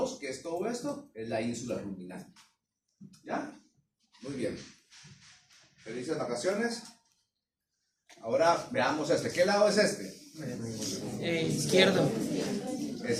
que es todo esto, es la ínsula ruminal. ¿Ya? Muy bien. Felices vacaciones. Ahora veamos este. ¿Qué lado es este? Izquierdo.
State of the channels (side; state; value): both; identical; correlation 1.00